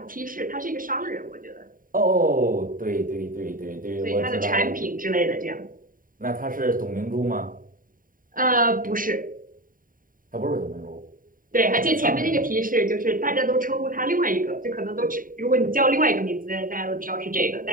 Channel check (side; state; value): left; late; 0.40 ms